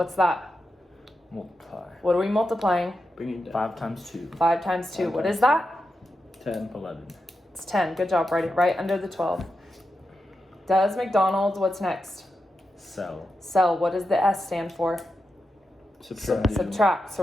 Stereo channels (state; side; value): normal; both; correlation 0.88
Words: that? Multiply. What are we multiplying? Bring it down. 5 times 2. 5 times 2. 5 What times is that? 10. 11. It's 10. Good job. Write it right under the 12. Does McDonald's, what's next? Sell. Sell. What does the S stand for? Subtract. Subtract.